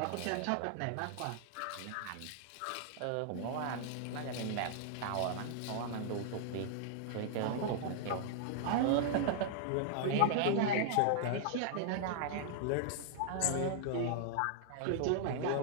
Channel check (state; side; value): different; both; correlation -0.01